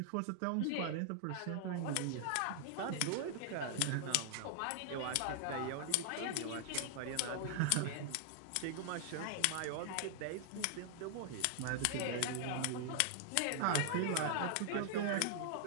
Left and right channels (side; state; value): both; different; correlation 0.00